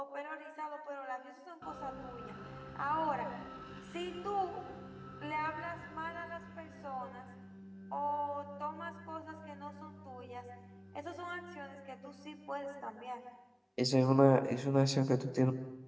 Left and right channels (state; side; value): identical; both; correlation 1.00